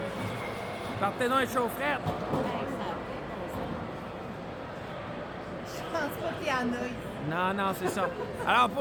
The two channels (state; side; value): identical; both; correlation 1.00